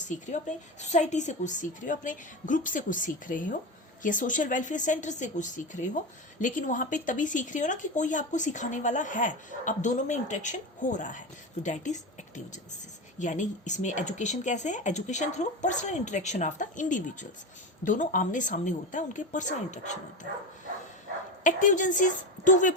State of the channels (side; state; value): both; normal; correlation 0.21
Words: रहे हो, अपने सोसाइटी से कुछ सीख रहे हो, अपने ग्रुप से कुछ सीख रहे हो, या सोशल वेलफेयर सेंटर से कुछ सीख रहे हो, लेकिन वहाँ पे तभी सीख रहे हो ना कि कोई आपको सिखाने वाला है, अब दोनों में इंटरेक्शन हो रहा है, तो दैट इज एक्टिव एजेंसीज। यानी इसमें एजुकेशन कैसे है, education through personal interaction of the individuals, दोनों आमने सामने होता है, उनके पर्सनल इंटरेक्शन होता है। Active agencies two way